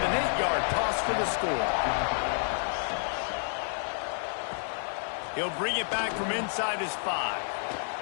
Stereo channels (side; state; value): right; silent; digital silence